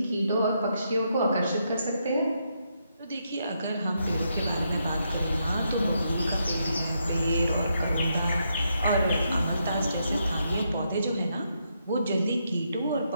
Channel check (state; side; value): inverted; both; correlation -0.79